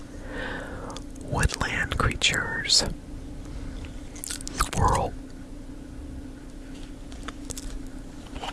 woodland creatures. Squirrel.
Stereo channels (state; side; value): identical; both; correlation 1.00